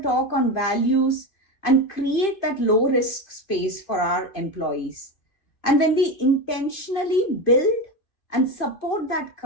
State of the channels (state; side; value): late; right; 2.4 ms